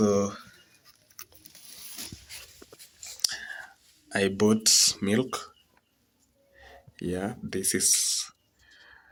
I bought milk. Yeah, this is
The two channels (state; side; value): identical; both; correlation 1.00